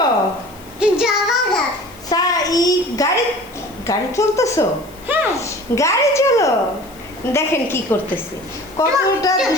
গাড়ি গাড়ি চলতেছো? হ্যাঁ গাড়ি চলো। দেখেন কি করতেছে, কতটা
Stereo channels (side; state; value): left; noise; hiss, 24 dB below the sound